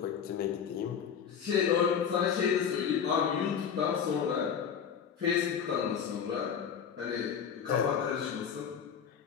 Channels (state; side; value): quieter; right; 7.5 dB